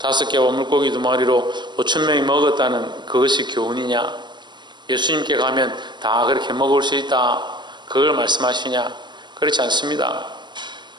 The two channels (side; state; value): left; late; 0.22 ms